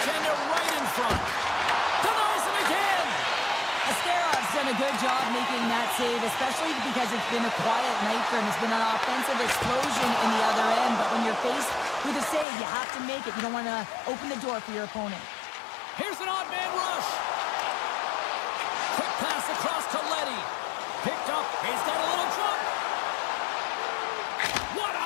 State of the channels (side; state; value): right; drops out; at 12.5 s